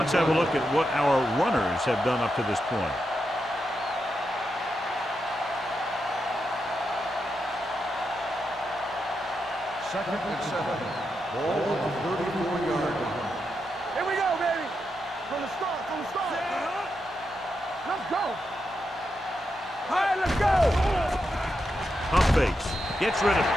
have a look at what our runners have done up to this point. Second and 7. Ball on the 34-yard line. Here we go, baby. From the start, Let's go. All right, let's go. Pump fakes. Gets rid of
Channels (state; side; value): normal; both; correlation 0.85